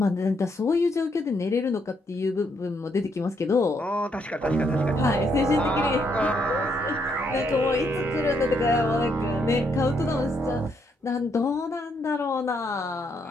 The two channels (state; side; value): normal; both; correlation 0.75